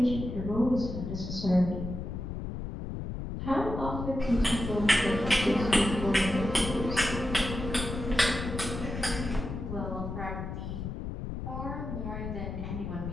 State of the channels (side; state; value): left; noise; rumble, 6 dB below the sound